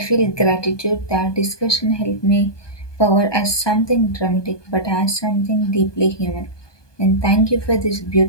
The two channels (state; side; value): late; right; 1.2 ms